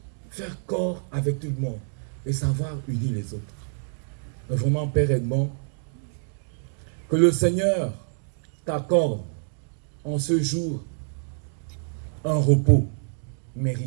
faire corps avec tout le monde et savoir unir les autres. Donc vraiment, Père Edmond, que le Seigneur t'accorde en ce jour un repos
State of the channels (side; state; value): left; silent; digital silence